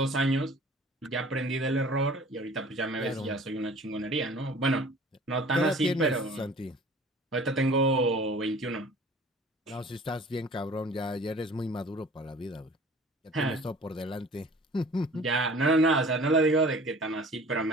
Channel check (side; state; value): both; normal; correlation 0.47